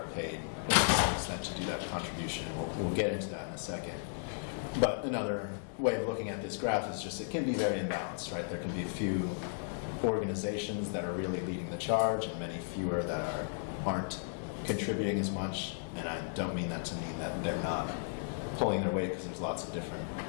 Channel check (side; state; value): right; silent; digital silence